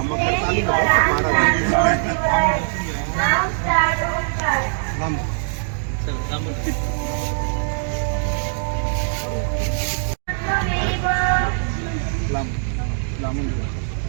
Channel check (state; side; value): silent; left; digital silence